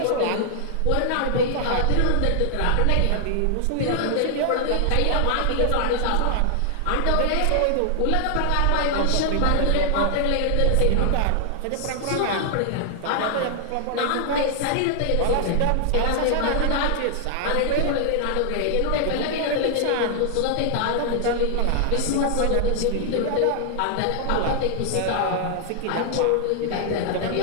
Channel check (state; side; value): different; both; correlation 0.00